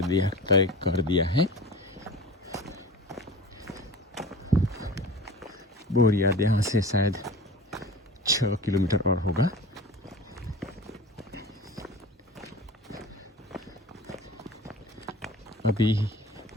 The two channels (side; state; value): both; normal; correlation 0.37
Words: कर दिया है। बोरियाद यहाँ से शायद 6 किलोमीटर और होगा। अभी